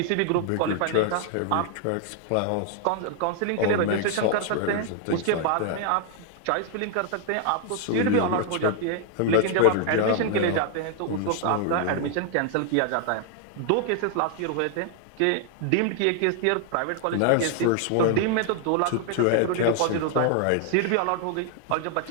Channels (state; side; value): different; both; correlation 0.00